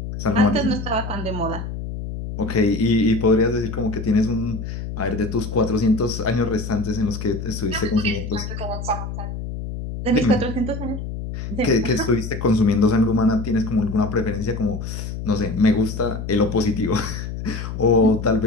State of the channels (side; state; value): left; noise; hum, 7 dB below the sound